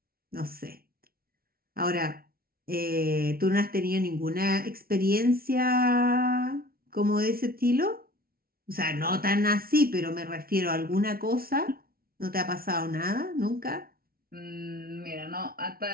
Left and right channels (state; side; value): late; left; 0.44 ms